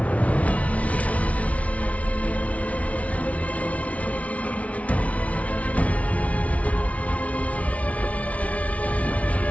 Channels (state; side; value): late; right; 0.066 ms